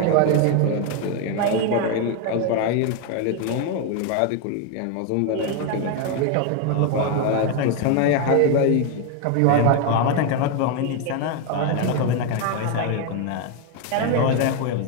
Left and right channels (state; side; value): different; both; correlation 0.01